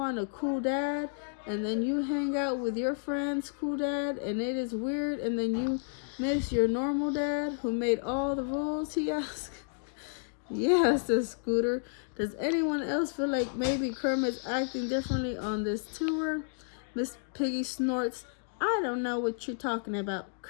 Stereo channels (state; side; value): silent; right; digital silence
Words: a cool dad, and then you hang out with your friend's cool dad, and it is weird, and then you miss your normal dad who made all the rules, he asks. Yeah, says Scooter. Does anyone else feel like maybe Kermit's acting differently on this tour? Miss Piggy snorts. I don't know what you're talking about.